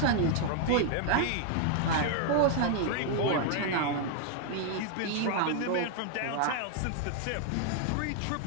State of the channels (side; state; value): both; different; correlation 0.00